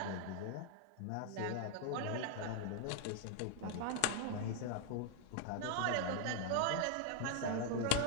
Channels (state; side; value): different; both; correlation 0.00